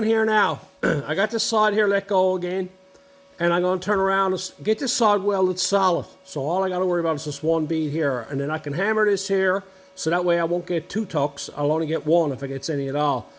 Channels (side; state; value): both; identical; correlation 1.00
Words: here now. I got this side here let go again, and I'm going to turn around and get this side welded solid. So all I got to worry about is this one bead here, and then I can hammer this here, so that way I won't get 2 tucks. I'll only get 1 if I get any at all.